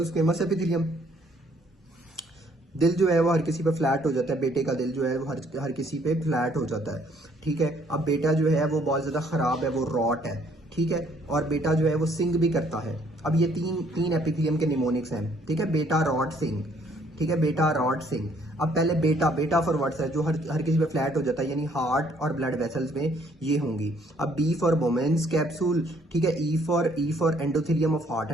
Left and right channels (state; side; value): normal; both; correlation 0.64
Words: स्क्वेमस एपिथेलियम, दिल जो है वो हर किसी पे फ्लैट हो जाता है। बेटे का दिल जो है वो हर किसी पे फ्लैट हो जाता है, ठीक है। अब बेटा जो है वो बहुत ज़्यादा ख़राब है, वो रॉट है, ठीक है। और बेटा जो है वो सिंग भी करता है। अब ये तीन एपिथेलियम के निमोनिक्स हैं, ठीक है। बेटा, रॉट, सिंग, ठीक है। बेटा, रॉट, सिंग। अब पहले बेटा फॉर वर्ड्स है जो हर किसी पे फ्लैट हो जाता है, यानी हार्ट और ब्लड वेसल्स में ये होंगी। अब बी फॉर वुमेन्स कैप्सूल, ठीक है। E for endothelium of heart